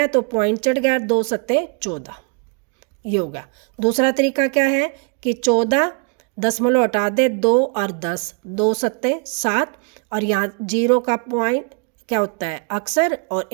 तो पॉइंट चढ़ गया, 2 सत्ते 14, ये होगा। दूसरा तरीका क्या है कि 14 दशमलव हटा दे, 2 और 10, 2 सत्ते 7, और यहाँ 0 का पॉइंट क्या होता है अक्सर, और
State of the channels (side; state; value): left; quieter; 38.4 dB